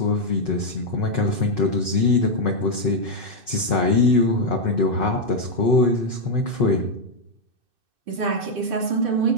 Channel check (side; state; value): left; late; 2.6 ms